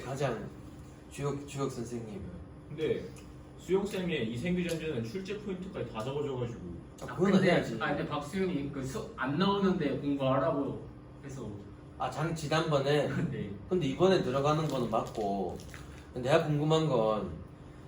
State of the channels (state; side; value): identical; both; correlation 1.00